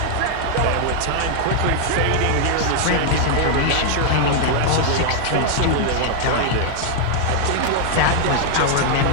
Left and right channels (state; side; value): different; both; correlation 0.00